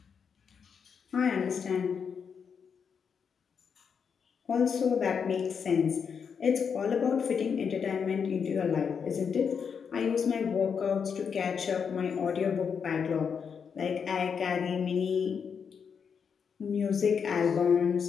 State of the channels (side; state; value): right; quieter; 6.6 dB